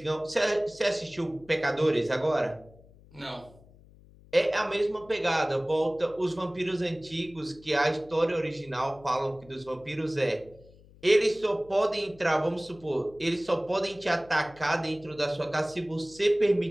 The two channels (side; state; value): left; noise; hum, 24 dB below the sound